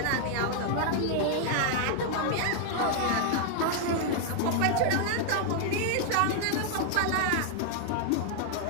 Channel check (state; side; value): different; both; correlation 0.00